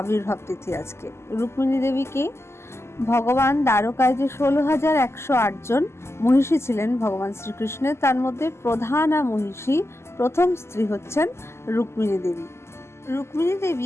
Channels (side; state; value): right; late; 0.13 ms